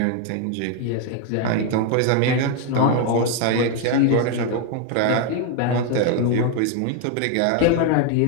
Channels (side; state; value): both; different; correlation 0.01